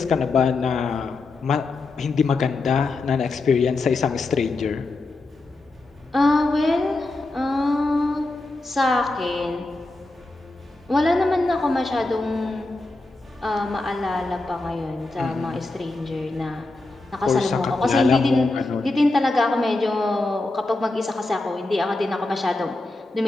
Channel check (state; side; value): quieter; right; 3.1 dB